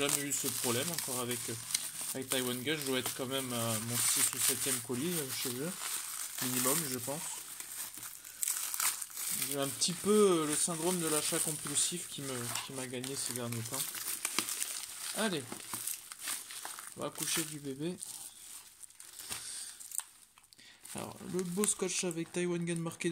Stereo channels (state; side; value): identical; both; correlation 1.00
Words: eu ce problème encore avec Taiwan Gun. Je dois être quand même à mon 6 ou 7e colis chez eux, minimum je pense. J'ai un petit peu le syndrome de l'achat compulsif qui m'a gagné ces derniers temps. Allez, on va coucher du bébé. Alors, le beau scotch avec Taiwan Gun marqué